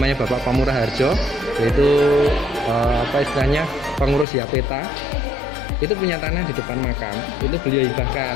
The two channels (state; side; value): drops out; right; at 4.2 s